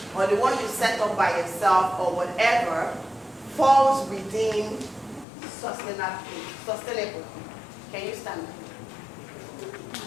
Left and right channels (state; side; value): drops out; right; at 5.2 s